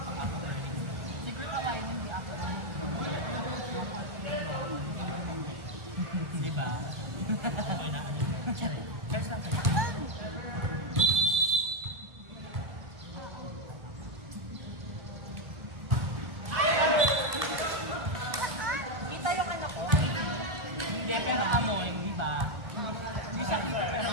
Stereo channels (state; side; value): late; left; 1.7 ms